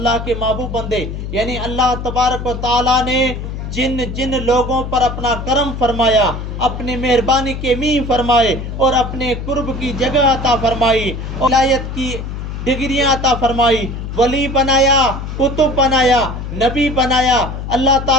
کے محبوب بندے، یعنی اللہ تبارک و تعالیٰ نے جن جن لوگوں پر اپنا کرم فرمایا، اپنی مہربانی کے میاں فرمائے، اور اپنے قرب کی جگہ عطا فرمائی، ولایت کی ڈگریاں عطا فرمائی، ولی بنایا، کتب بنایا، نبی بنایا، اللہ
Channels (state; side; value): noise; left; hum, 6 dB below the sound